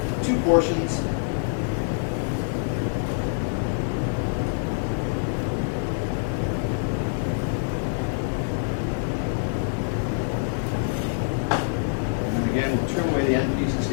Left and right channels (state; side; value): silent; right; 61 dB below the other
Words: 2 portions. And then again, we'll trim away the end pieces